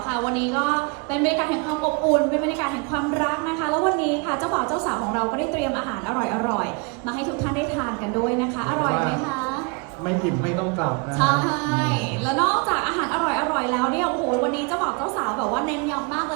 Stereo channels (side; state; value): left; quieter; 30.5 dB